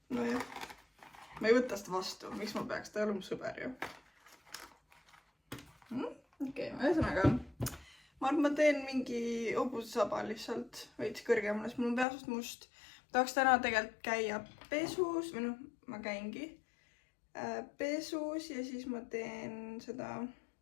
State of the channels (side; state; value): right; drops out; at 12.1 s